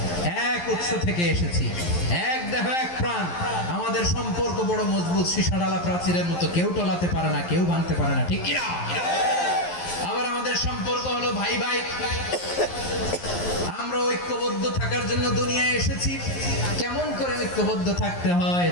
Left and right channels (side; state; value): right; late; 11 ms